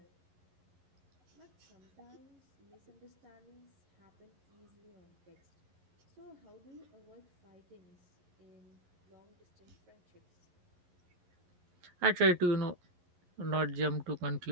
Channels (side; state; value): left; late; 11 ms